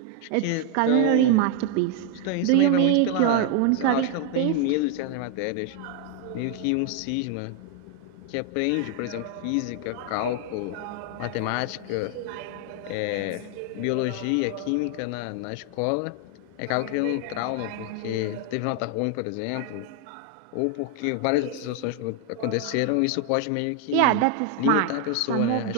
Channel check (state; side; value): different; both; correlation 0.00